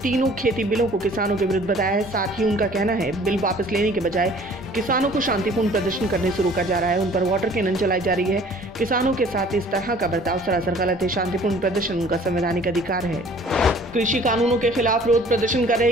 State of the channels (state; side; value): normal; both; correlation 0.52